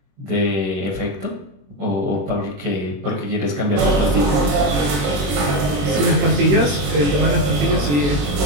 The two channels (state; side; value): late; left; 21 ms